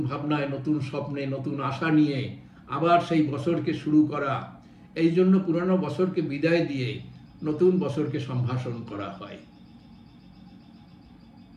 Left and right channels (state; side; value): identical; both; correlation 1.00